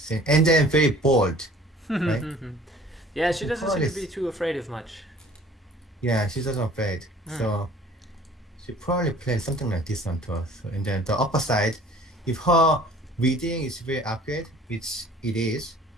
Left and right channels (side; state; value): both; normal; correlation 0.50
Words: and then very bold, right? Yeah, she doesn't seem to Probably- be too afraid of much. Yeah, she doesn't afraid. So she probably played something like this one too. So, and then the upper side, if her reading is very accurate, which it is,